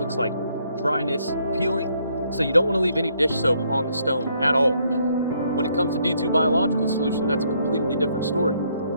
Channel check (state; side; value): inverted; both; correlation -0.70